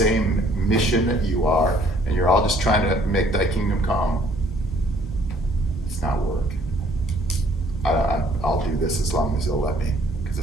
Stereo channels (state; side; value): normal; both; correlation 0.61